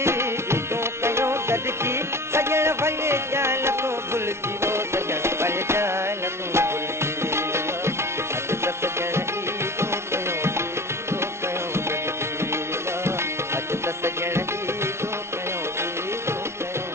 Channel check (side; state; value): left; late; 0.13 ms